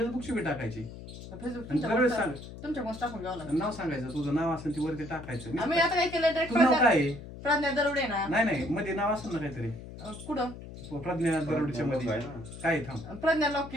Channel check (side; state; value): left; noise; hum, 13 dB below the sound